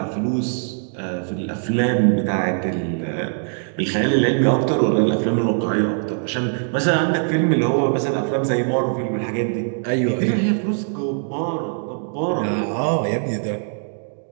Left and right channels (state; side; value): silent; left; digital silence